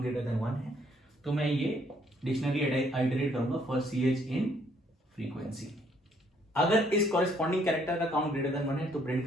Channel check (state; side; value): normal; both; correlation 0.66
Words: ग्रेटर देन 1 है। तो मैं ये डिक्शनरी आइटरेट करूंगा फॉर ch इन फ्रीक्वेंसी। अगर इस कॉरेस्पॉन्डिंग कैरेक्टर का काउंट ग्रेटर देन 1 है तो प्रिंट